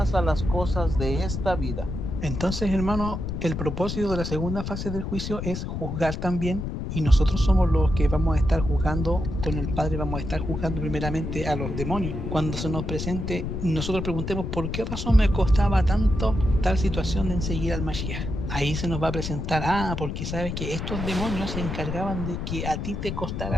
a las cosas de esta vida. Entonces, hermano, el propósito de la segunda fase del juicio es juzgar también. Y nosotros somos los que vamos a estar juzgando con el Padre, vamos a estar juzgando primeramente a los demonios. Cuando se nos presente, nosotros preguntemos por qué razón me costaba tanto tal situación de seguir al Mashiach. Ahí se nos va a presentar, porque sabes que estos demonios se encargaban de que a ti te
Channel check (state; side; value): noise; left; rumble, 4 dB below the sound